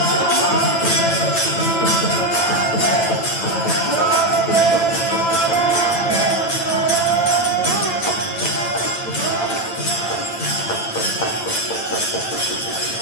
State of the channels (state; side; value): late; right; 8.9 ms